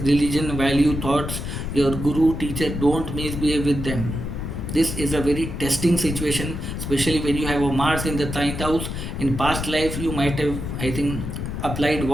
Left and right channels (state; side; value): noise; left; rumble, 5 dB below the sound